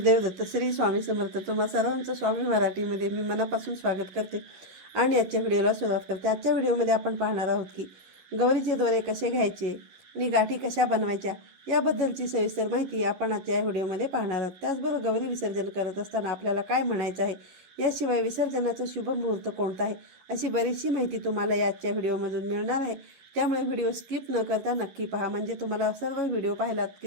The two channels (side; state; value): left; late; 11 ms